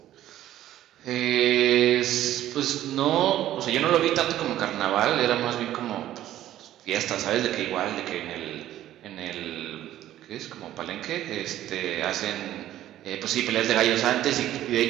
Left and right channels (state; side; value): quieter; left; 13.0 dB